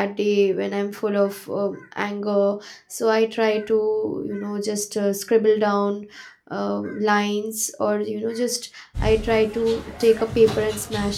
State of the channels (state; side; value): identical; both; correlation 1.00